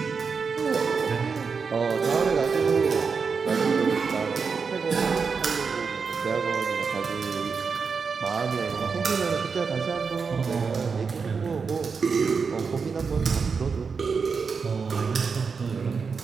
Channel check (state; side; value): quieter; left; 5.4 dB